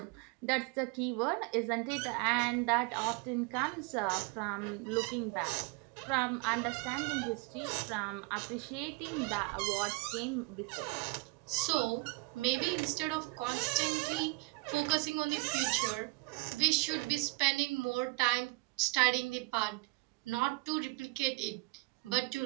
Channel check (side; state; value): left; quieter; 26.6 dB